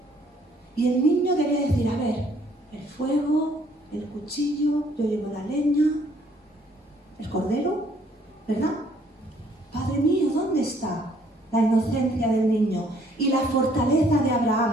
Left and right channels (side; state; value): both; normal; correlation 0.63